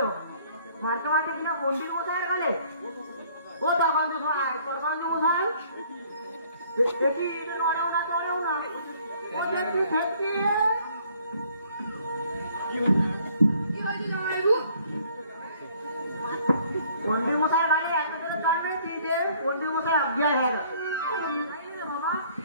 মারতে মারতে কিনা পণ্ডিত মশাইয়ের গালে। ও তখন তো মশাই দেখি নড়েও না নড়েও না। ও দেখি ফেলছি। পণ্ডিত মশাইয়ের গালে এত করে চড়বে যে পণ্ডিত মশাই আজ্ঞা হয়ে গেছে। বাবা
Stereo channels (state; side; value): inverted; both; correlation -0.59